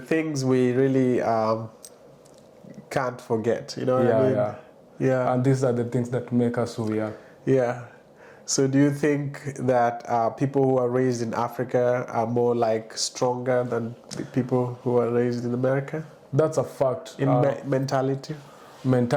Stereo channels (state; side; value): identical; both; correlation 1.00